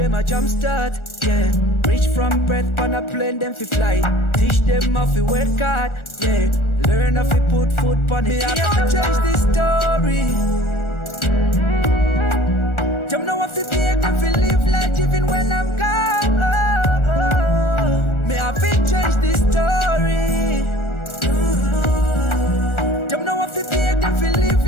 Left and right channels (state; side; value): late; right; 1.4 ms